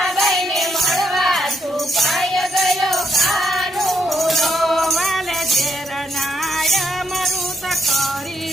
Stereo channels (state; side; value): normal; both; correlation 0.76